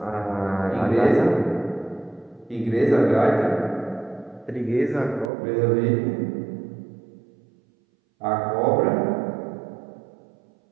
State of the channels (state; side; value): drops out; left; at 5.3 s